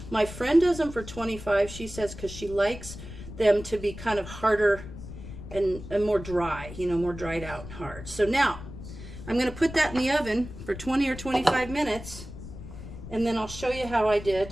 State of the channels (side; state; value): left; noise; rumble, 12 dB below the sound